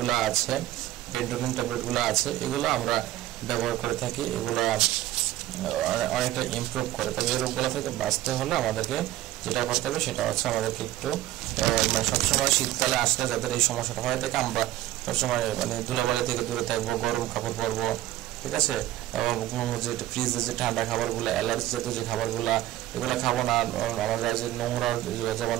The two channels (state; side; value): quieter; left; 14.6 dB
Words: আছে, বেন্টোলিন ট্যাবলেটগুলো আছে, এগুলো আমরা ব্যবহার করে থাকি। এগুলো অনেকটা ইমপ্রুভ করে। তবে এই রোগগুলো থেকে বাঁচতে হলে আমাদেরকে যেটা করতে হবে সেটা হচ্ছে আমাদেরকে একটু সবসময় শীতকালে আসলে যাদের এই সমস্যাটা হয়ে থাকে, আমরা সবসময় মানে ধুলাবালি থেকে দূরে থাকবো, গরম কাপড় পরবো, ঠিক আছে। যে ফ্রিজে যে ঠান্ডা খাবারগুলো, অ্যালার্জি জাতীয় যে খাবারগুলো, এগুলো খাবো না। আমরা যে নোংরা, যেমন